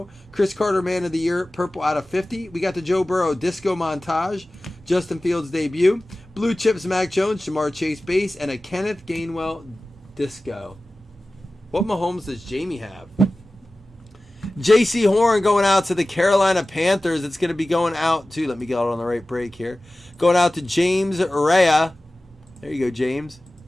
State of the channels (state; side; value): normal; both; correlation 0.97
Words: Chris Carter man of the year, purple out of 50. We got the Joe Burrow disco montage, Justin Fields debut, blue chips Mac Jones, Jamar Chase base, and a Kenneth Gainwell disco. What Mahomes does Jamie have? J.C. Horn going out to the Carolina Panthers. It's going to be going out to, let me get it on the right break here. Going out to James Rea. There you go, James.